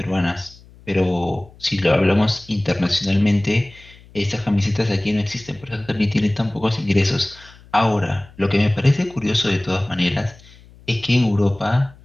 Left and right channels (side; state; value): left; noise; hum, 24 dB below the sound